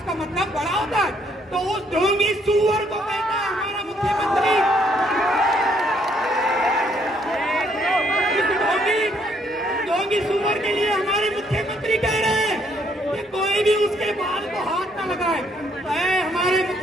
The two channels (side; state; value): both; normal; correlation 0.69